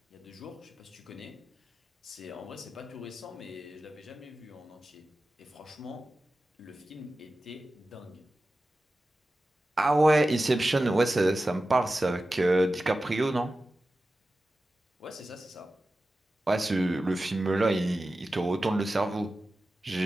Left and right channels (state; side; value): normal; both; correlation 0.94